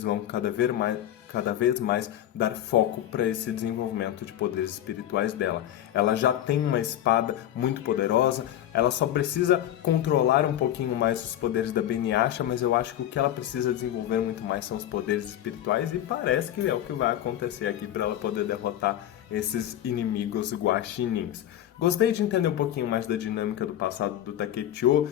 vão cada vez mais dar foco para esse desenvolvimento de poderes espirituais dela. Ela já tem uma espada muito poderosa, ela só precisa controlar um pouquinho mais os poderes da Beniyasha, mas eu acho que o que ela precisa desenvolver muito mais são os poderes espirituais, e parece que é o que vai acontecer aqui para ela poder derrotar esses inimigos guaxinins. Gostei de entender um pouquinho mais da dinâmica do passado do Takechio.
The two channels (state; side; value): quieter; right; 11.9 dB